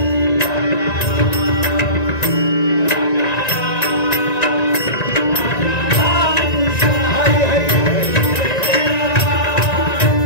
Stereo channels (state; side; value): late; right; 1.9 ms